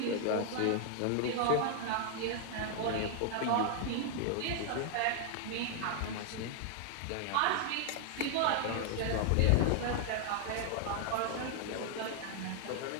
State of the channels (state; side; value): different; both; correlation 0.00